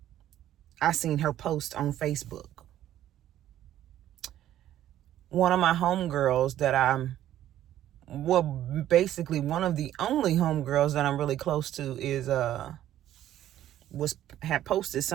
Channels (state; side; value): quieter; left; 12.3 dB